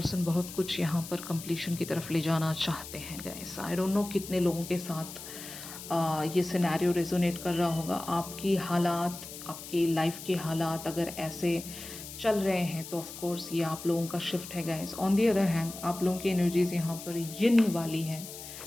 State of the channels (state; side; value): noise; left; hiss, 12 dB below the sound